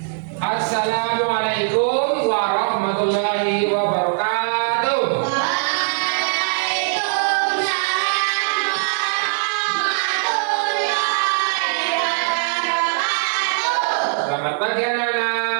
warahmatullahi wabarakatuh. Selamat pagi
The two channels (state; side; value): silent; left; digital silence